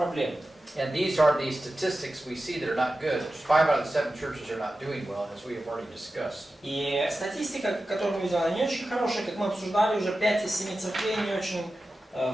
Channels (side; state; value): both; normal; correlation 0.93